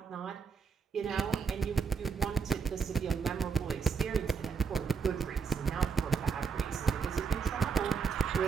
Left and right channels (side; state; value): left; quieter; 6.0 dB